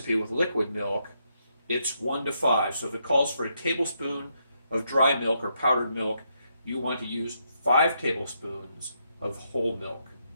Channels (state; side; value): inverted; both; correlation -0.78